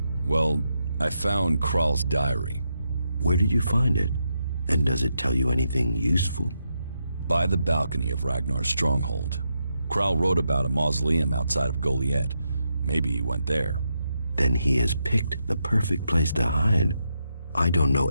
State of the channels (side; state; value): both; inverted; correlation -0.83